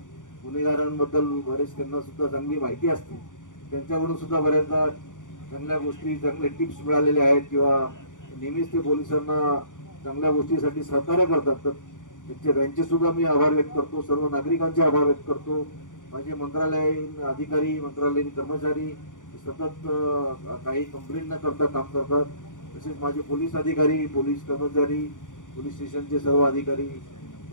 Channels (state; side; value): late; right; 0.87 ms